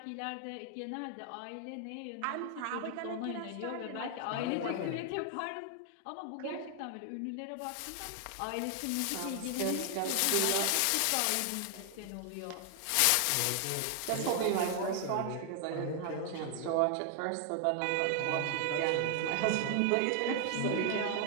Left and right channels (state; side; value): different; both; correlation 0.00